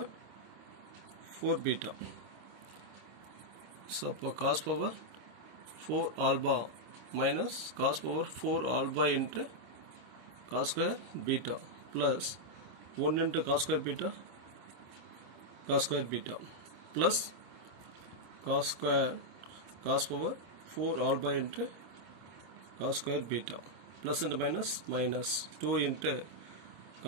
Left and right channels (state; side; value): late; left; 26 ms